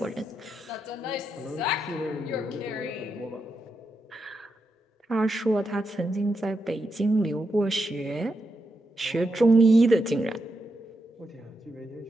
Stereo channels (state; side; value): normal; both; correlation 0.85